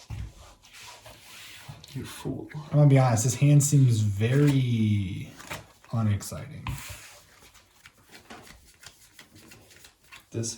You fool. I'm gonna be honest, this hand seems very unexciting. This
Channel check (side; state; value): both; identical; correlation 1.00